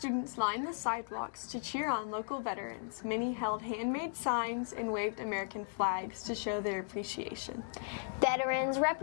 lined the sidewalks to cheer on local veterans. Many held handmade signs and waved American flags to show their appreciation. Veterans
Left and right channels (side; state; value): right; silent; digital silence